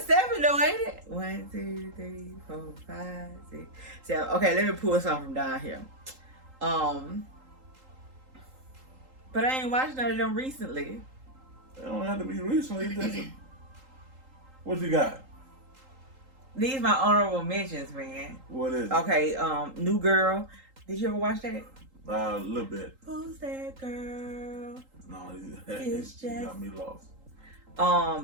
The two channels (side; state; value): left; late; 3.8 ms